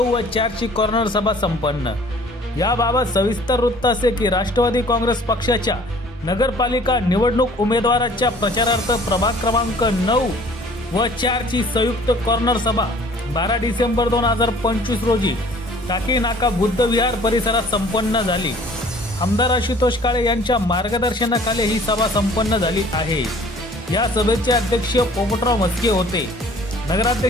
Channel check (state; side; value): normal; both; correlation 0.52